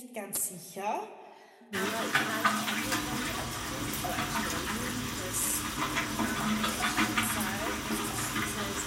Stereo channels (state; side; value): identical; both; correlation 1.00